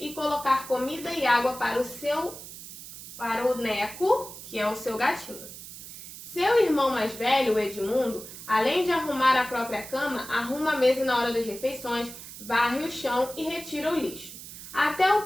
colocar comida e água para o Neco, que é o seu gatinho. Seu irmão mais velho, o Edmundo, além de arrumar a própria cama, arruma a mesa na hora das refeições, varre o chão e retira o lixo. Até o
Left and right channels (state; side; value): noise; right; hiss, 13 dB below the sound